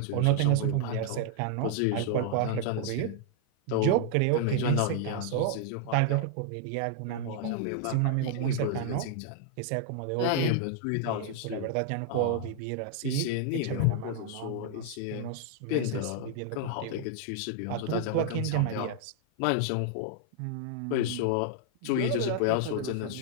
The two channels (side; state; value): both; different; correlation -0.01